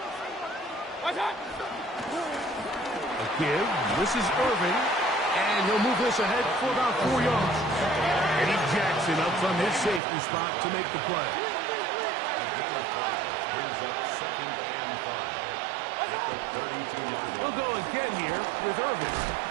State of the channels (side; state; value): left; drops out; at 10.0 s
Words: A give. This is Irving. And he'll move this ahead for about 4 yards. Eddie Jackson up from his safety spot to make the play. We'll go again here with Irving.